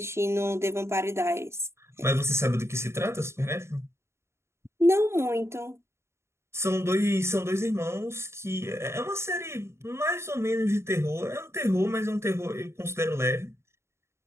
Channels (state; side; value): late; left; 0.13 ms